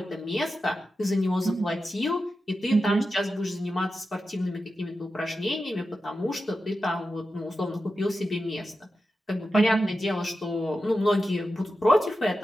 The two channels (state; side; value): normal; both; correlation 0.91